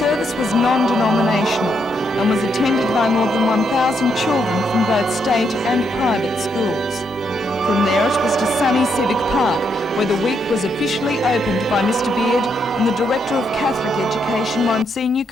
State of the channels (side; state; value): both; normal; correlation 0.77